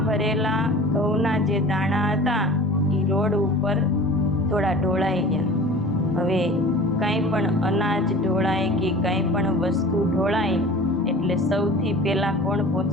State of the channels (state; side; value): normal; both; correlation 0.40